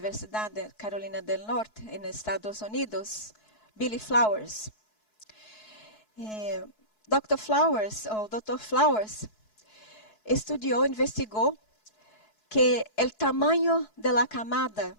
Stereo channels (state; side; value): late; right; 4.7 ms